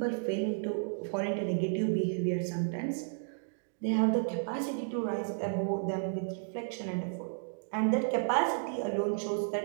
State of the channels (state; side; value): silent; left; digital silence